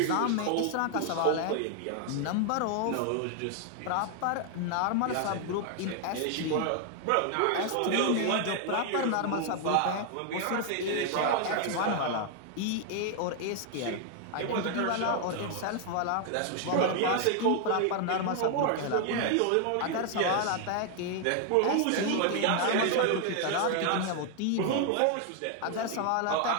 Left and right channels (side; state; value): both; different; correlation 0.00